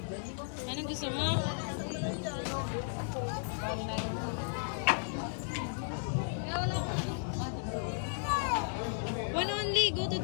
Anong gusto mo? One only. Go to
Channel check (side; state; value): right; silent; 55 dB below the other